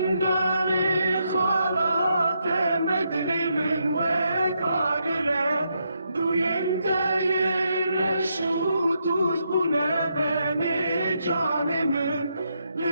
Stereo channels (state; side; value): inverted; both; correlation -0.80